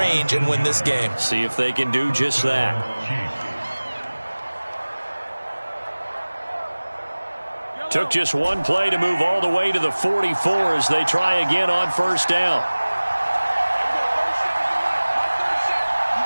and win this game. See if they can do just that. Took just one play to move all the way to the 44 as they try again on 1st down.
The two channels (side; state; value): both; inverted; correlation -1.00